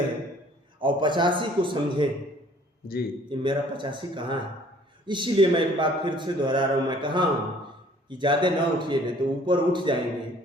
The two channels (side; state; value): both; normal; correlation 0.56